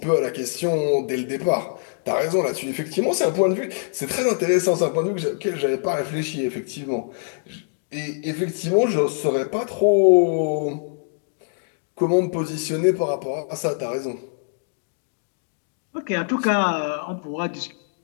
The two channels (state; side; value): silent; right; digital silence